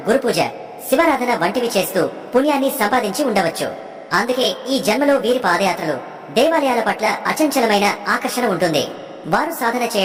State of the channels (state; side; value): identical; both; correlation 1.00